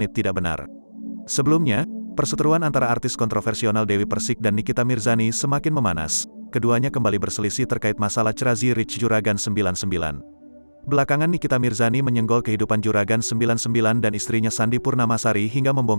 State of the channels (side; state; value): both; inverted; correlation -1.00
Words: tidak benar. Sebelumnya, perseteruan antara artis kontroversial Dewi Persik dan Nikita Mirzani semakin memanas. Keduanya kembali berselisih terkait masalah Crazy Rich Juragan 99. Belakangan Nikita Mirzani menyenggol kehidupan Juragan 99 dan istrinya Sandi Purnamasari hingga